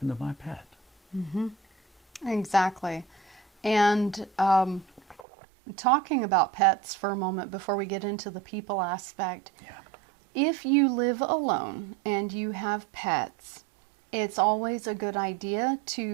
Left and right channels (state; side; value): drops out; left; at 5.2 s